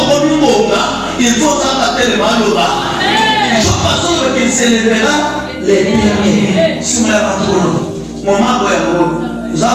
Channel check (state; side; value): identical; both; correlation 1.00